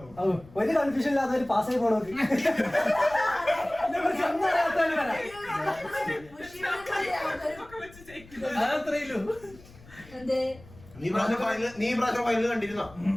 ഒരു കൺഫ്യൂഷൻ ഇല്ലാത്ത ഒരു പാസ്സായി പോണോക്ക് നീ പ്രാവശ്യം ഫൈനൽ കണ്ടിരുന്നോ?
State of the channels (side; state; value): left; noise; rumble, 22 dB below the sound